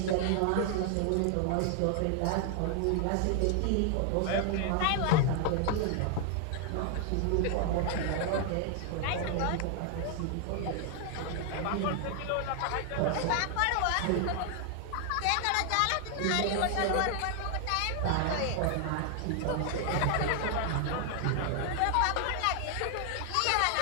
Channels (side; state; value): both; different; correlation 0.00